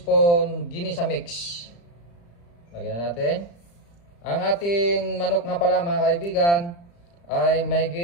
ginisa mix. Lagyan na natin. Ang ating manok nga pala mga kaibigan ay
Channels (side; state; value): right; late; 35 ms